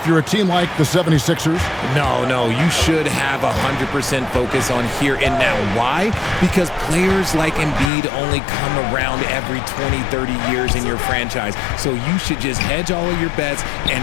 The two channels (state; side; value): drops out; right; at 7.9 s